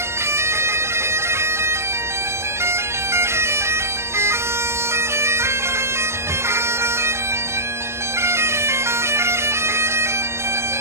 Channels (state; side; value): late; left; 0.13 ms